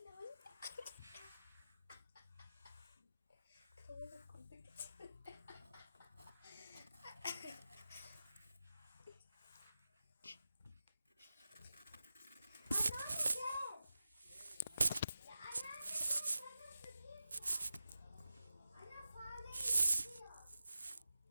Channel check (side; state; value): both; inverted; correlation -0.94